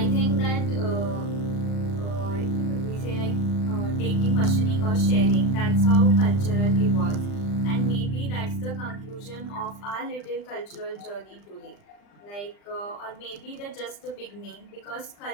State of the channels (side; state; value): right; late; 39 ms